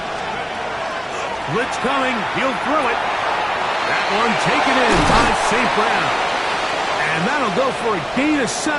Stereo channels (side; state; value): both; identical; correlation 1.00